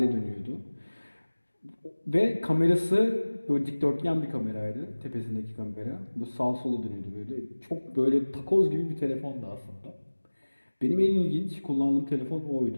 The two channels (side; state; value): both; inverted; correlation -1.00